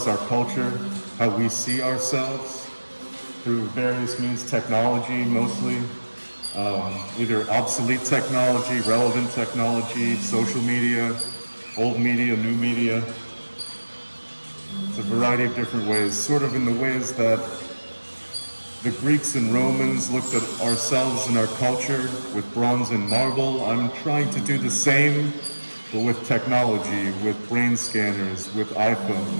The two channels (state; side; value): inverted; both; correlation -1.00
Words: our culture, how we see ourselves through various means, technology mostly, either obsolete technology, relevant technology, social media, old media, new media. It's a variety of different ways, sort of in the ways that the Greeks and Romans looked at ourselves and our culture with bronze and marble. I'm trying to do the same, but with technology, with brain scanners, with